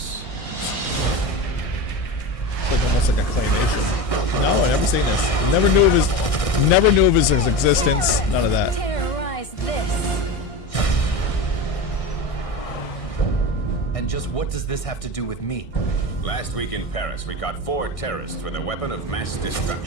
It's like almost like a claymation. No, I never seen this. Never knew of his existence. None of that. Terrorize this. And just what does this have to do with me? Last week in Paris, we caught 4 terrorists with a weapon of mass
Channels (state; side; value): late; right; 1.6 ms